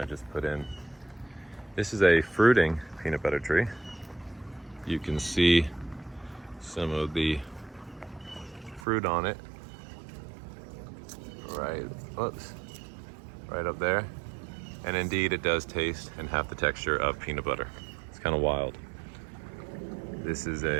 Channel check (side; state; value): left; drops out; at 8.8 s